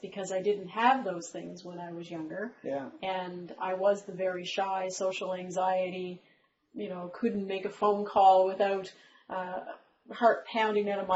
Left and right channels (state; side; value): identical; both; correlation 1.00